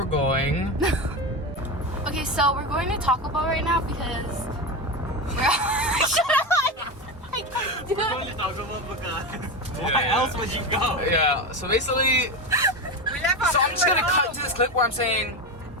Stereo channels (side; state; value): both; normal; correlation 0.18